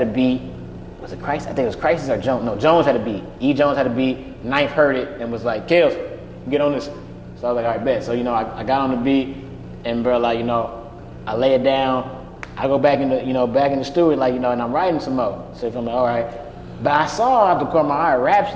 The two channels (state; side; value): identical; both; correlation 1.00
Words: a beat. Was it Crisis? I think it was Crisis or Jones. No, Jones had a beat. E. Jones had a beat. Knife heard it and was like, Kells, get on this. So I was like, all right, bet. So, I got on the beat, and bro, I lay it down. I go back in the studio, and I'm writing some more. So I'm like, all right. But I saw out the corner of my eye,